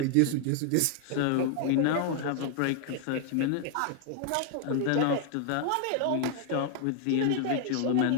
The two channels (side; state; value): both; different; correlation 0.00